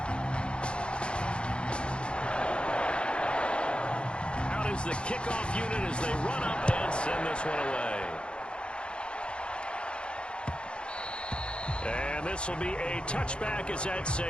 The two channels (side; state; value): right; late; 0.056 ms